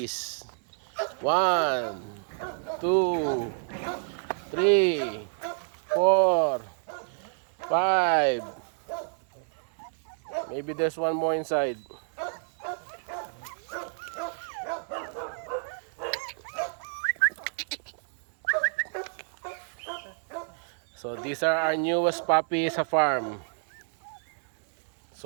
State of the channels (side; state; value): left; silent; digital silence